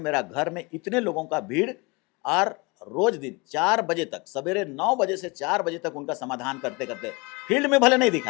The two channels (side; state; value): right; quieter; 27.0 dB